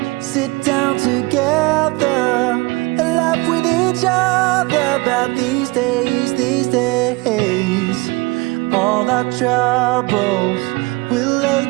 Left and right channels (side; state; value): left; quieter; 24.6 dB